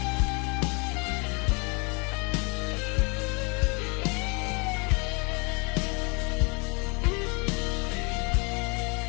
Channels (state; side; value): quieter; right; 32.1 dB